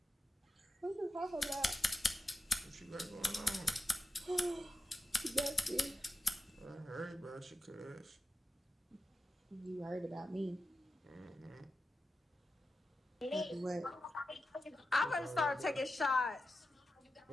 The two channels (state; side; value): normal; both; correlation 0.91